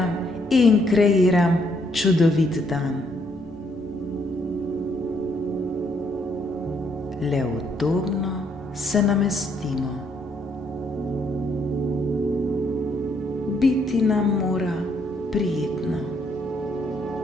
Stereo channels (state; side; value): normal; both; correlation 0.71